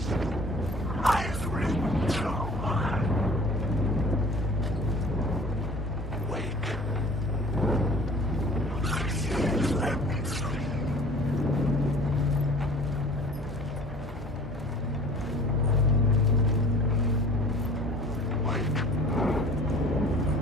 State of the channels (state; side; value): normal; both; correlation 0.47